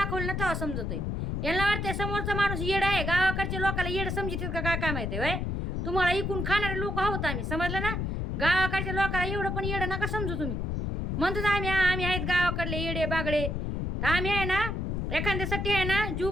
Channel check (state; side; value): noise; left; rumble, 1 dB below the sound